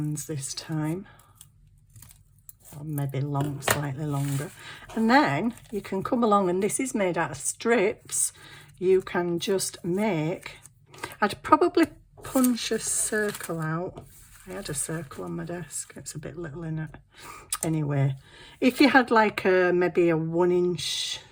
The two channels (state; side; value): identical; both; correlation 1.00